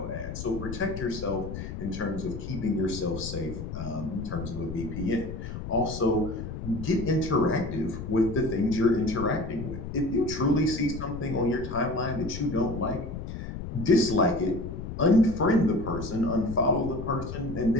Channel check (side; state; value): left; noise; rumble, 8 dB below the sound